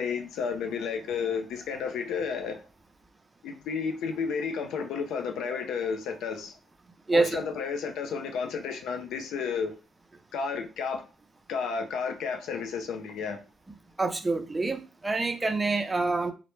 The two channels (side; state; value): both; normal; correlation 0.73